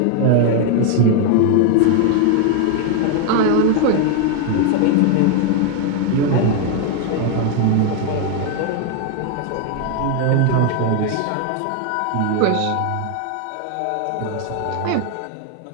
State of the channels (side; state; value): both; different; correlation 0.01